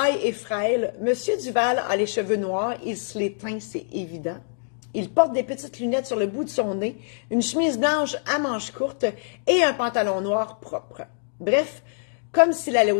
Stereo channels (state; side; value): silent; right; digital silence